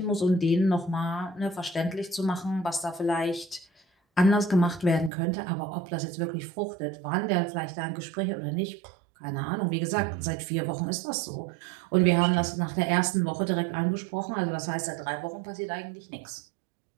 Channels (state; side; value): drops out; left; at 5.1 s